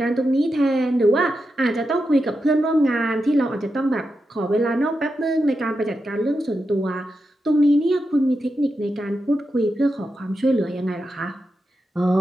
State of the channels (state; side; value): normal; both; correlation 0.88